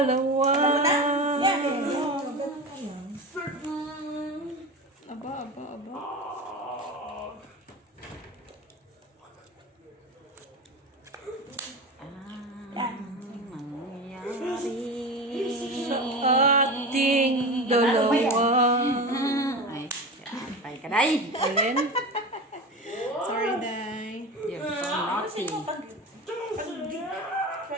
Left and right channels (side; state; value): both; normal; correlation 0.27